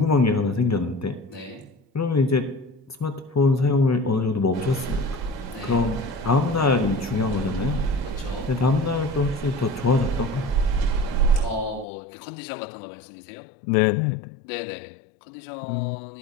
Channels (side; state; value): right; drops out; at 11.9 s